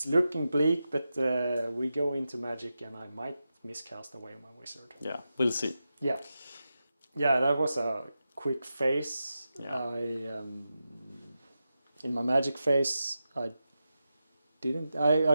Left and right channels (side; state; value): both; inverted; correlation -0.90